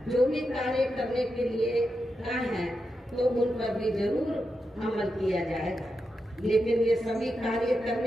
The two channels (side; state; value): both; normal; correlation 0.87